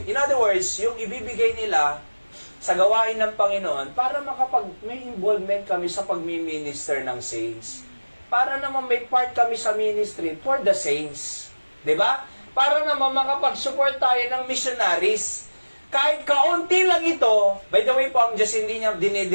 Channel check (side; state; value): both; inverted; correlation -1.00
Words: In other words, yung ibibigay nila sa gawain ng Panginoon para may involvement kami sa pagmi-minister ng saints. Para naman may part kami sa ministry for the saints. 'Di ba? Para naman makapag-support tayo ng missionaries. Kahit kaunti lang ito, by the way po, ang Diyos hindi niya